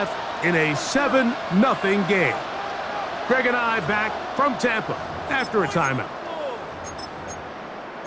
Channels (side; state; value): both; identical; correlation 1.00